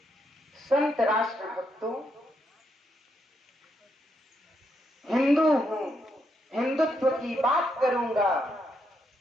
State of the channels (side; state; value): both; normal; correlation 0.79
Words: संत राष्ट्र भक्तों, हिंदू हूँ, हिंदुत्व की बात करूंगा,